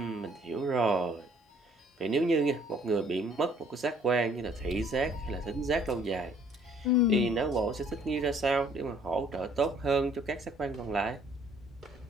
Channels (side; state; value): both; normal; correlation 0.61